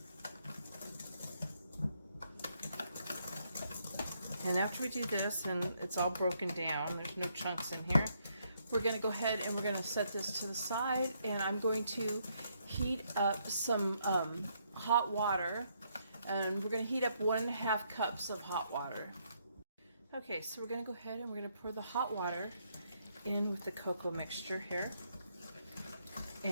And after we do this and it's all broken down, there's no chunks in here, we're going to go ahead and we're going to set this to the side, and I'm going to heat up some hot water, and we're going to heat up 1.5 cups of hot water. Okay, so we're going to go ahead and we're going to pour the hot water in with the cocoa mixture here,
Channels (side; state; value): both; inverted; correlation -0.74